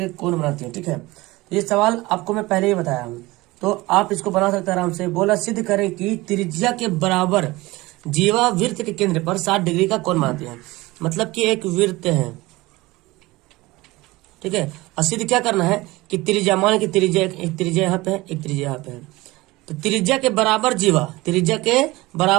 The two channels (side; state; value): left; quieter; 20.6 dB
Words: कोण बनाती है। ठीक है, तो ये सवाल आपको मैं पहले ही बताया हूँ, तो आप इसको बना सकते हैं आराम से। बोला सिद्ध करें कि त्रिज्या के बराबर जीवावृत्त के केंद्र पर 60 डिग्री का कोण बनाती है। मतलब कि एक वृत्त है, ठीक है। और सिद्ध क्या करना है कि त्रिज्या, मान कि त्रिज्या एक त्रिज्या यहाँ पे है, एक त्रिज्या यहाँ पे है, तो त्रिज्या के बराबर जीवा, त्रिज्या के